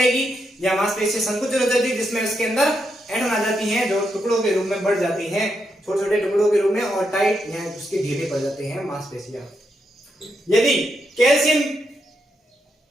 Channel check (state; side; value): normal; both; correlation 0.82